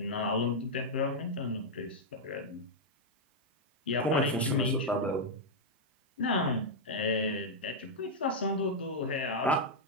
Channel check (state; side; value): normal; both; correlation -0.03